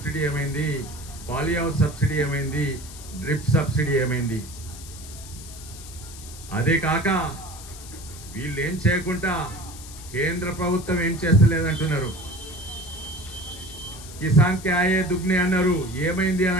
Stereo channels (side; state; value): left; noise; hiss, 15 dB below the sound